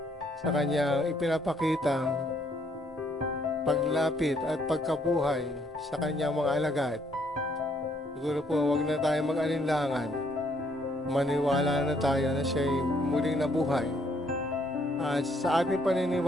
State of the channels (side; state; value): both; normal; correlation 0.69